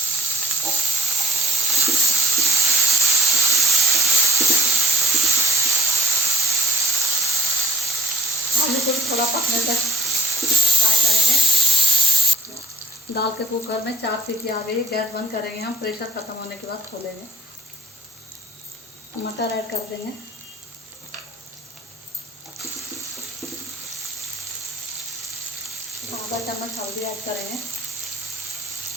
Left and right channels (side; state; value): both; normal; correlation 0.52